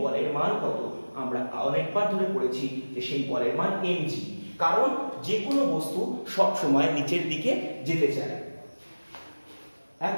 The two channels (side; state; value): both; inverted; correlation -1.00